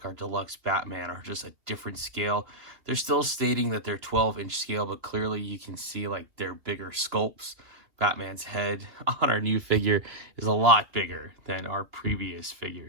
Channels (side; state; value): left; late; 2.9 ms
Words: our deluxe Batman, are just a different scale. They're still stating that they're 12-inch scale, but clearly you can see like they're bigger sculpts. Batman's head on our new figure is a lot bigger than our previous